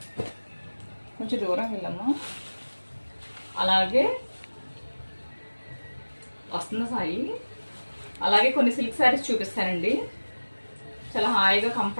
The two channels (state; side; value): inverted; both; correlation -1.00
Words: కొంచెం దూరం వెళ్ళమ్మా. అలాగే వస్తున్న సాయి. అలాగే కొన్ని సిల్క్ శారీస్ చూపిస్తానండి. చాలా హాయిగా